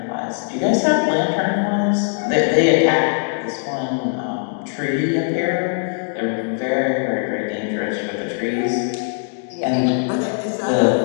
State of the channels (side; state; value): right; silent; 58 dB below the other